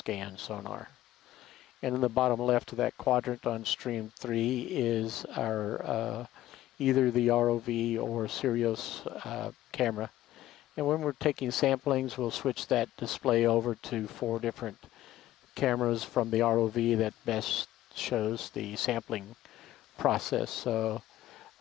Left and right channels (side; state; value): right; quieter; 14.4 dB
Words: sonar. And in the bottom left of that quadrant on stream 3 is our either the ROV or Sirius camera. And when we're taking samplings, we'll switch that display over to 4 different cameras from the ROV that best shows the sampling process. So